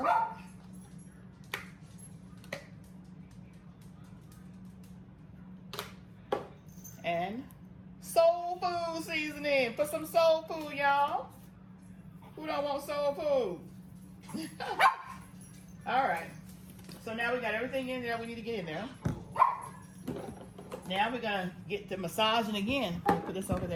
and soul food seasoning. Put some soul food, y'all. Who don't want soul food? All right. So now we got everything in there we need to get in there. Now we're gonna get to massaging again. Put this over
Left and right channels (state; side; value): identical; both; correlation 1.00